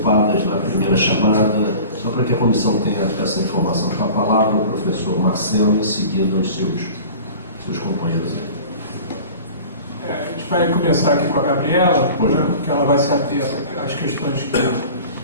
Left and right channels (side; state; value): both; inverted; correlation -0.40